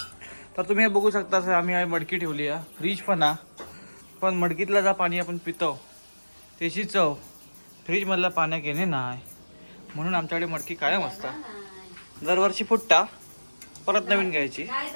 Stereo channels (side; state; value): both; inverted; correlation -1.00